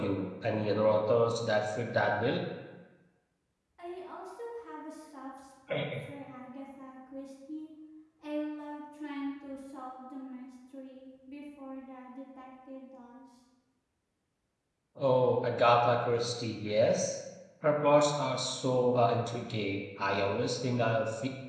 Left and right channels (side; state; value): both; identical; correlation 1.00